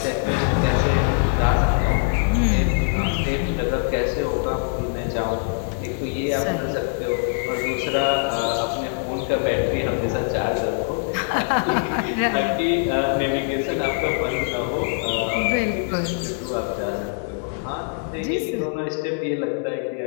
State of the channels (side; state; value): right; silent; 63 dB below the other